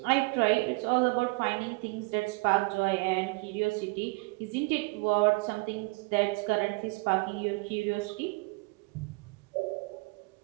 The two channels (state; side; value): quieter; left; 27.4 dB